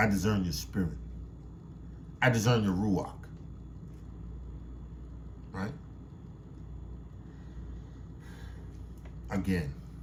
discern your spirit. I discern your Ruach. Right? Again,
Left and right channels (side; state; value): both; identical; correlation 1.00